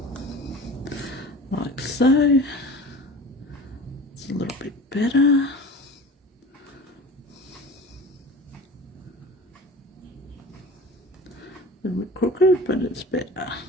like so. It's a little bit better. A little bit crooked, but it's better.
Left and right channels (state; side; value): normal; both; correlation 0.38